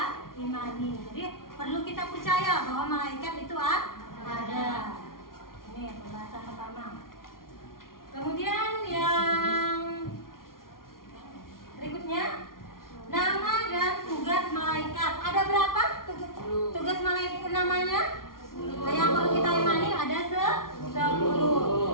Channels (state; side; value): late; right; 0.92 ms